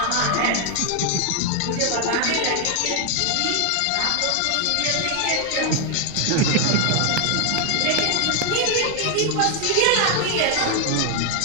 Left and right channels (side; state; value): both; different; correlation 0.00